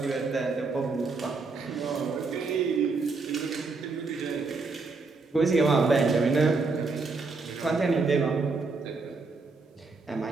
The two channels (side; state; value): left; quieter; 4.1 dB